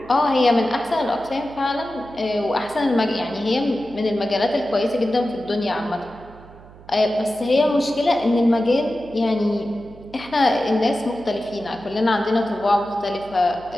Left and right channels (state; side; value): noise; right; hum, 21 dB below the sound